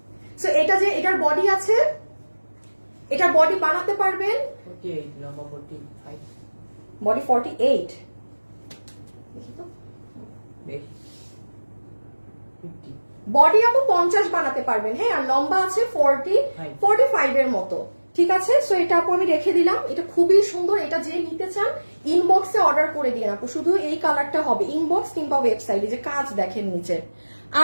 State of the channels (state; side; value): inverted; both; correlation -1.00